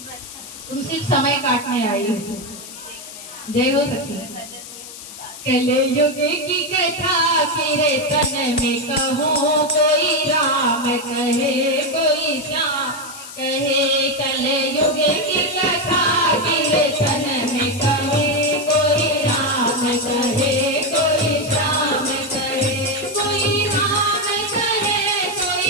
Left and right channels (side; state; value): left; noise; hiss, 14 dB below the sound